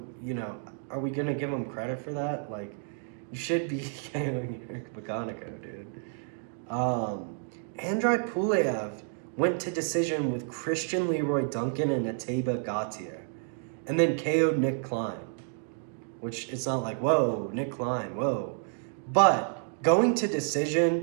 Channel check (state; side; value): silent; left; 58 dB below the other